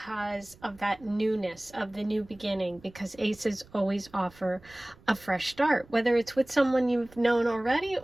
of that newness of the new beginning, because aces always offer a fresh start, whether it's with someone you've known already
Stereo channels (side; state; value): right; noise; rumble, 25 dB below the sound